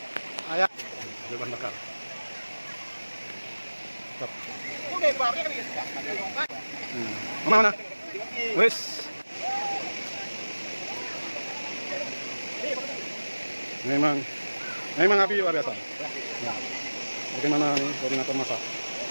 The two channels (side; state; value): both; inverted; correlation -1.00